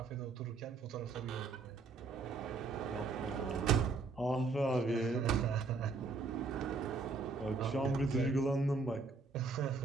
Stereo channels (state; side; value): quieter; left; 4.1 dB